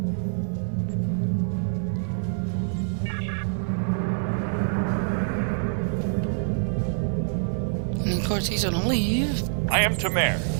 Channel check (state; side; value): silent; left; digital silence